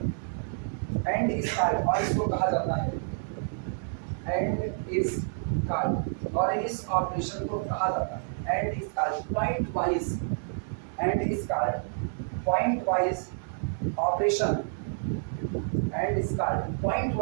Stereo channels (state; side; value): silent; left; 59 dB below the other